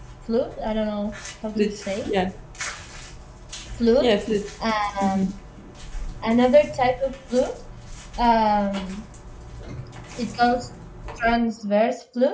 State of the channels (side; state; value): both; identical; correlation 1.00